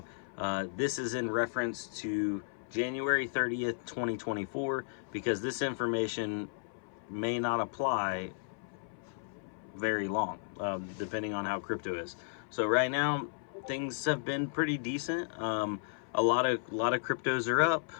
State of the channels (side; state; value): right; silent; 55 dB below the other